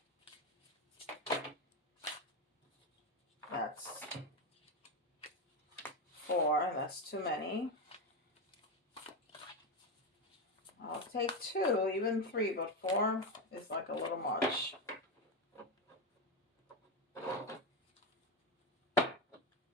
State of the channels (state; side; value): normal; both; correlation 0.12